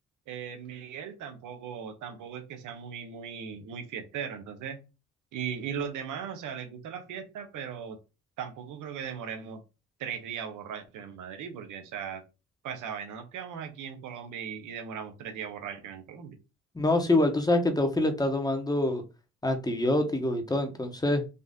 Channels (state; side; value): normal; both; correlation 0.58